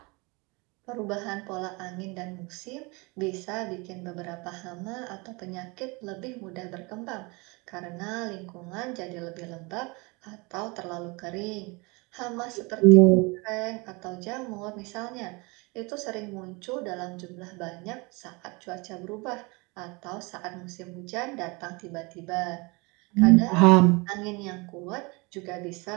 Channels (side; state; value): left; quieter; 27.3 dB